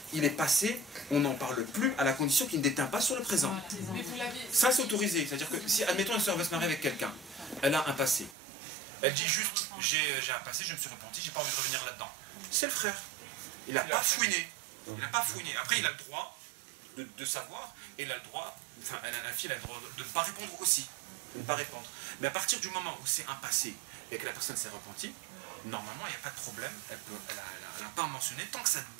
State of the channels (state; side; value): drops out; left; at 8.3 s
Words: il est passé, on n'en parle plus à la condition qu'il ne déteint pas sur le présent. Ça c'est autorisé. C'est-à-dire que si, admettons, une soeur veut se marier avec quelqu'un, elle a un passé. Elle dit juste, j'ai un passé, je me suis repenti, j'ai pas envie de revenir là-dedans. C'est le frère. Il n'a pas fouiné. Il n'a pas fouiné. Après, il a le droit de savoir, et il a le droit, enfin, la fille a le droit de ne pas répondre aussi. De ne pas répondre. Mais à partir du moment où c'est un passé et que la personne s'est repentie, normalement, il n'y a pas de problème. Elle n'a pas à mentionner tant que ça ne